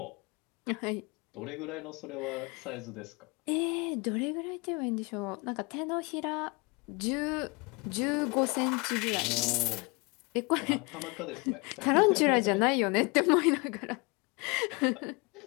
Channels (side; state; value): right; quieter; 28.9 dB